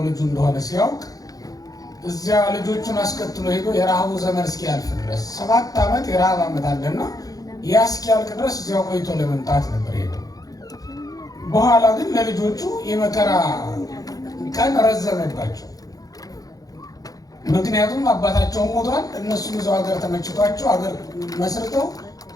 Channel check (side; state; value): right; late; 0.18 ms